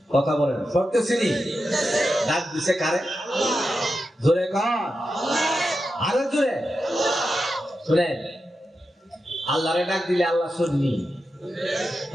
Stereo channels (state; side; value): normal; both; correlation 0.89